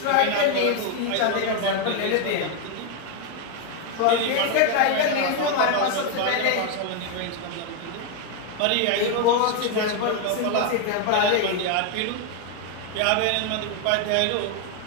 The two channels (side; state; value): both; different; correlation 0.01